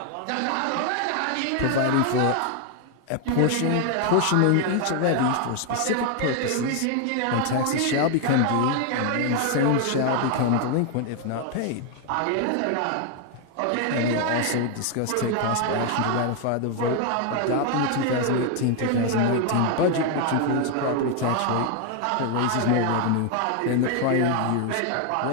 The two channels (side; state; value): both; different; correlation 0.00